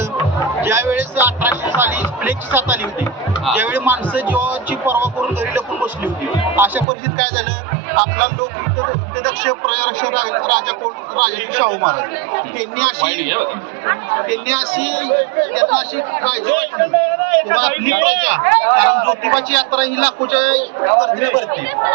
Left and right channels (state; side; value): drops out; left; at 6.9 s